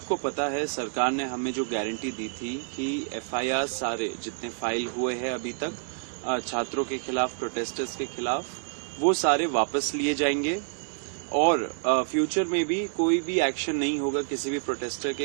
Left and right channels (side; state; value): left; silent; 59 dB below the other